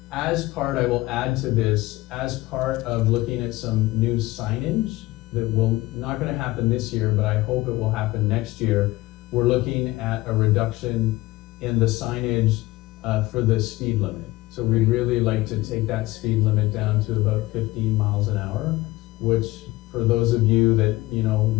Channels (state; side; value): quieter; right; 19.0 dB